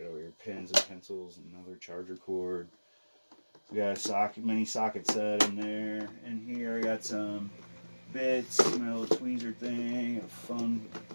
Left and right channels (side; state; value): both; inverted; correlation -1.00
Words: over here pens and pencils, another charger cord. We got a mini socket set in there. In here I got some bits, my little tweezer thing,